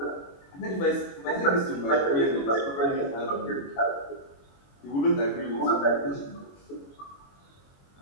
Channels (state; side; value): late; right; 21 ms